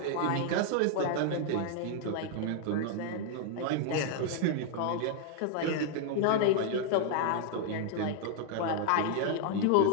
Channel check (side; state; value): both; different; correlation 0.00